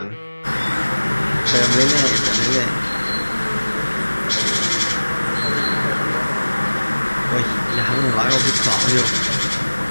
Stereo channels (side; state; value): both; inverted; correlation -1.00